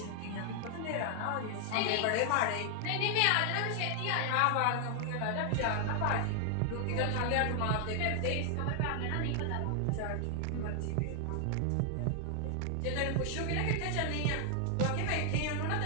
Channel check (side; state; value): both; different; correlation 0.00